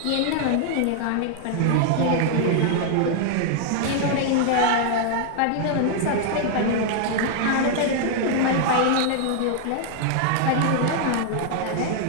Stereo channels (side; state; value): both; different; correlation 0.00